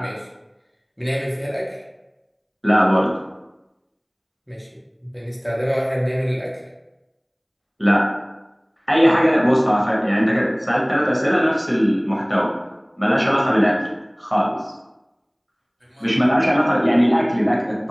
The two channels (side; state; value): both; identical; correlation 1.00